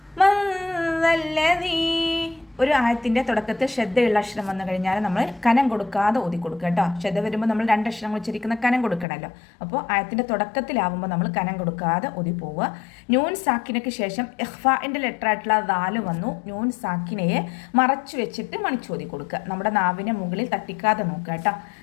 من ذا الذي ഒരു ആയത്തിൻ്റെ തുടക്കത്തിൽ ശ്രദ്ധയുള്ള അക്ഷരം വന്നു കഴിഞ്ഞാൽ നമ്മൾ കനം കൊടുക്കാതെ ഓതി കൊടുക്കുക കേട്ടോ. ശ്രദ്ധ വരുമ്പോൾ നമ്മൾ രണ്ട് അക്ഷരങ്ങൾ ഉച്ചരിക്കുന്ന കനം കൊടുക്കണമല്ലോ. അപ്പോൾ ആയത്തിൻ്റെ തുടക്കത്തിലാവുമ്പോൾ നമ്മൾ കനം കൊടുക്കാതെ ഓതി പോവുക. നൂൻ സാക്കിനയ്ക്ക് ശേഷം ഇഖ്ഫാഇൻ്റെ ലെറ്റർ ആയിട്ടുള്ള ദാല് വന്നു. നൂൻ സാക്കിനയെ മറച്ചു വെച്ചിട്ട് മണിച്ചോതി കൊടുക്കുക. നമ്മുടെ നാവിനെ മുകളിൽ തട്ടിക്കാതെ നോക്കുക കേട്ടോ.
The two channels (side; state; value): right; drops out; at 9.1 s